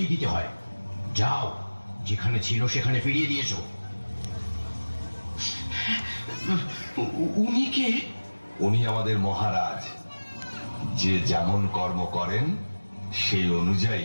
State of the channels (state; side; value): inverted; both; correlation -1.00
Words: দিতে হয়। যাও, যেখানে ছিল সেখানে ফিরিয়ে দিয়েছো। উনি কে? উনি আমাদের মহারাজ। যে যেমন কর্ম করেন সেই